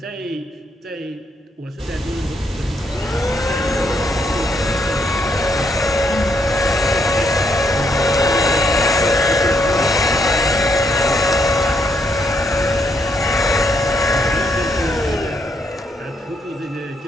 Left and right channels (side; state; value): both; normal; correlation 0.75